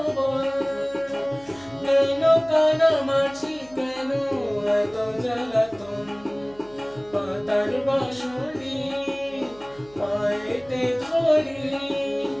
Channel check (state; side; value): noise; right; hum, 25 dB below the sound